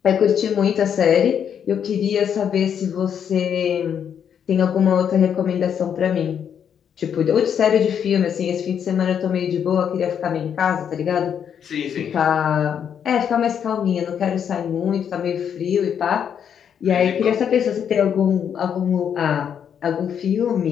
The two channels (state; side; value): quieter; right; 8.2 dB